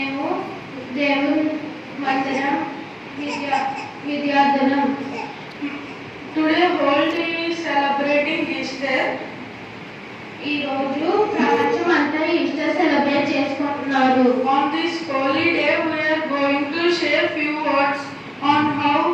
దేవుని మందిరం విద్యార్థులం. Today world is celebrating Easter. ఈ రోజు ప్రపంచం అంతా ఈస్టర్ సెలబ్రేట్ చేసుకుంటున్నారు. On this holy day we are going to share few words on how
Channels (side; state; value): both; identical; correlation 1.00